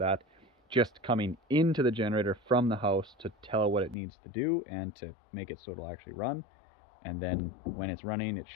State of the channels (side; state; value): right; drops out; at 4.0 s